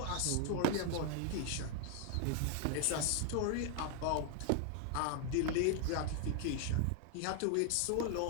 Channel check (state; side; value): different; both; correlation 0.01